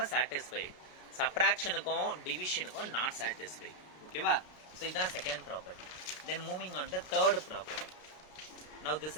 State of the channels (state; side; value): late; right; 33 ms